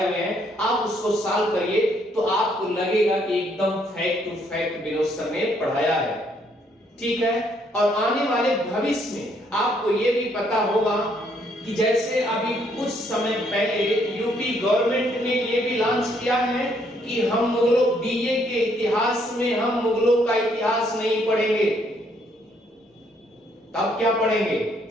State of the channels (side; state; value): both; normal; correlation 0.69